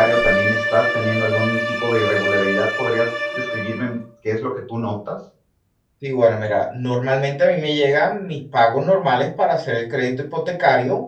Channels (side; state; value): both; identical; correlation 1.00